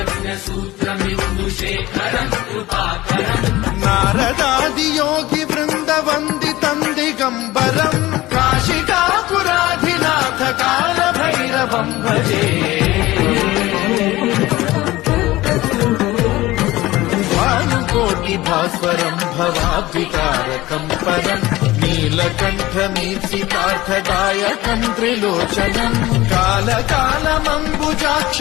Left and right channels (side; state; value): right; quieter; 17.9 dB